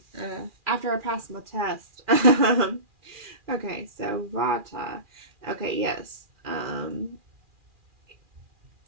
after I passed my test. Okay, so Vata. Okay, yes.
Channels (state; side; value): late; left; 2.4 ms